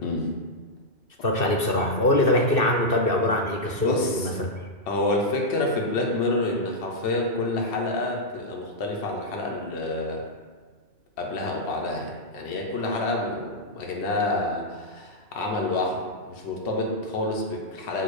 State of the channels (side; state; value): right; late; 2.6 ms